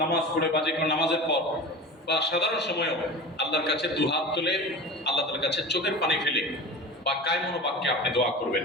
নামাজ পড়ে বা যে কোনো নামাজের পর বা সাধারণ সময়েও আল্লাহর কাছে দুহাত তুলে আল্লাহ তাআলার কাছে চোখের পানি ফেলে বা কায়মনো বাক্যে আপনি দোয়া করবেন,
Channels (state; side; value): normal; both; correlation 0.32